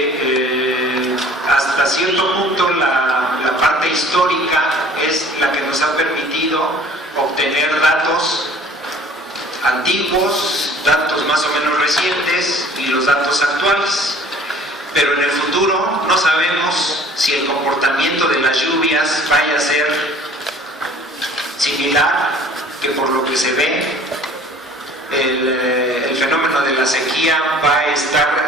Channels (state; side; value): normal; both; correlation 0.51